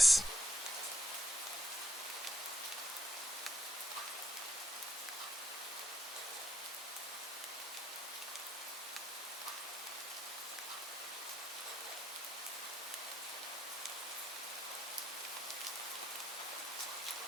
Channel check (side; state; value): both; normal; correlation 0.74